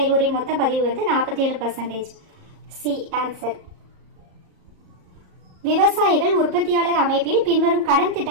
மொத்த பதிவு வந்து 47%. C answer. விவசாயிகள் உற்பத்தியாளர் அமைப்பில் பின்வரும் கடன்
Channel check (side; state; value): left; late; 37 ms